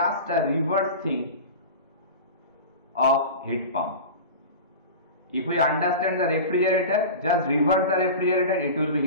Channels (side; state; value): both; inverted; correlation -0.31